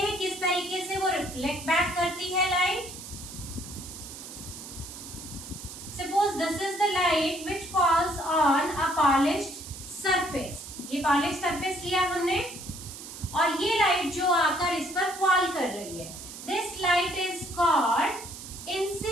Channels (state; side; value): noise; right; hiss, 12 dB below the sound